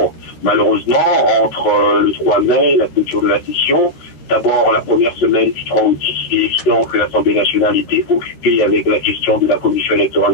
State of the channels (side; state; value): right; late; 13 ms